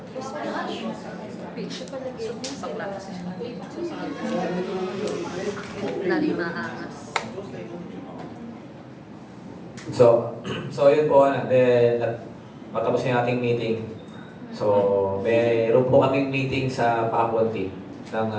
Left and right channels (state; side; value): identical; both; correlation 1.00